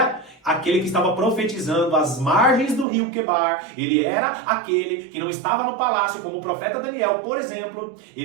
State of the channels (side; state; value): left; drops out; at 2.9 s